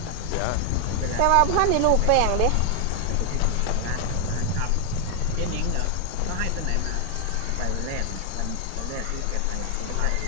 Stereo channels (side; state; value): both; different; correlation 0.00